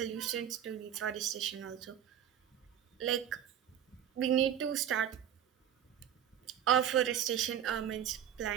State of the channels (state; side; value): quieter; left; 9.9 dB